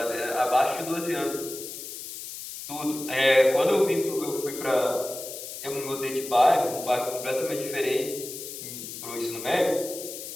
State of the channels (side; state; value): left; noise; hiss, 10 dB below the sound